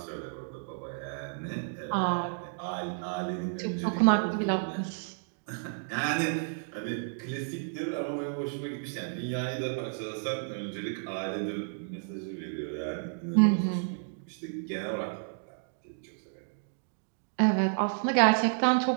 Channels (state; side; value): silent; left; digital silence